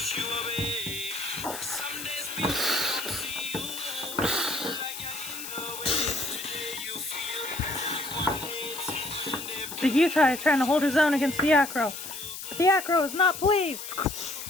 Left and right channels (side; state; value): left; noise; hiss, 9 dB below the sound